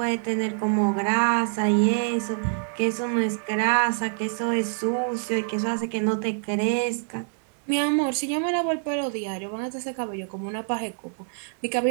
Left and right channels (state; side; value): silent; left; digital silence